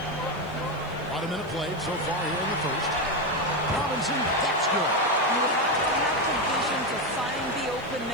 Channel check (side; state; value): right; noise; hiss, 28 dB below the sound